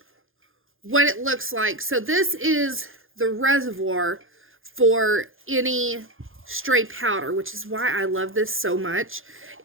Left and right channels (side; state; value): left; late; 0.59 ms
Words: what it looks like. So this is the reservoir for any stray powder, which is why I love this so much,